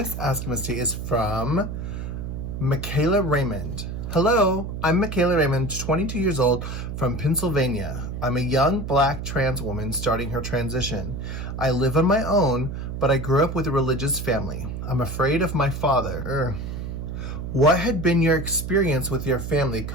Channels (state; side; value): noise; right; hum, 6 dB below the sound